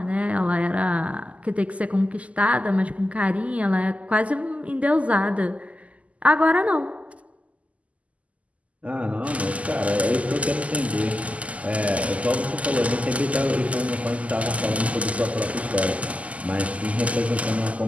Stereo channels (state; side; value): late; left; 0.068 ms